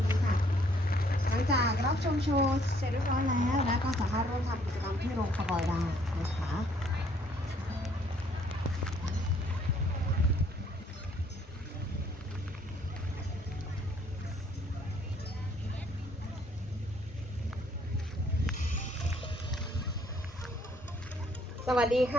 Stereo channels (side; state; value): both; normal; correlation 0.64